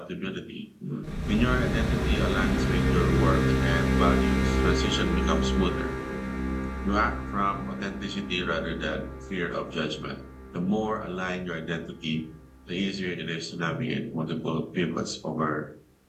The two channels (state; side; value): identical; both; correlation 1.00